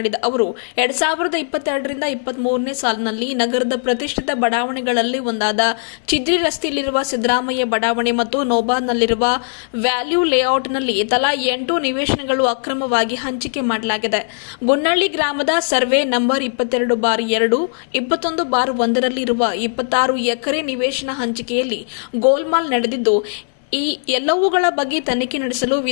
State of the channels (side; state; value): right; silent; 67 dB below the other